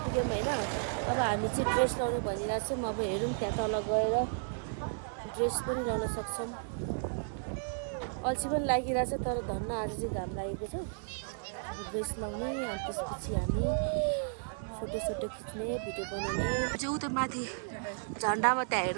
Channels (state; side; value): silent; left; 55 dB below the other